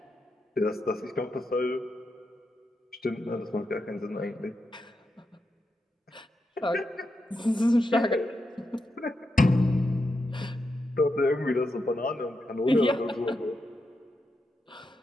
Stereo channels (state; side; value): normal; both; correlation 0.86